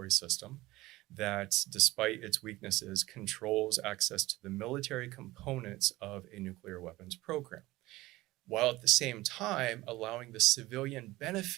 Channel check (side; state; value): left; quieter; 18.5 dB